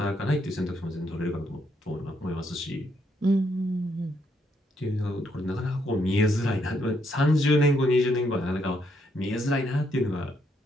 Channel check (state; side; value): normal; both; correlation 0.75